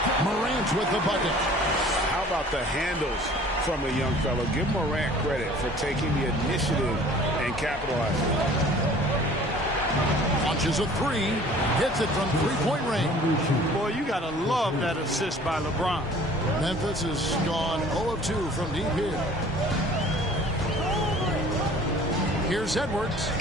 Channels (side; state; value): both; normal; correlation 0.50